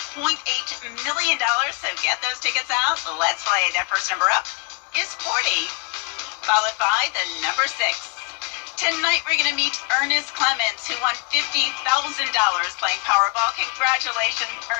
million. So get those tickets out. Let's play. That first number up is 40, followed by the number 6. Tonight we're going to meet Ernest Clements, who won $50,000 playing Powerball. Congratulations,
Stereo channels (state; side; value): quieter; right; 32.5 dB